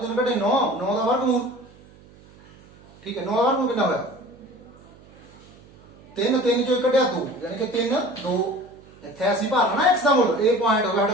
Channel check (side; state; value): right; noise; hum, 24 dB below the sound